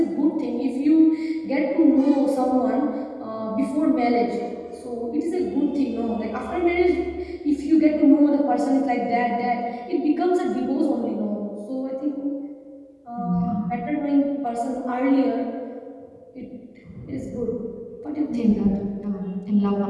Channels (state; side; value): identical; both; correlation 1.00